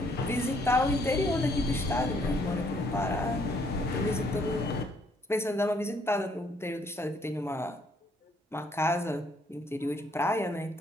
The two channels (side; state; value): both; normal; correlation 0.67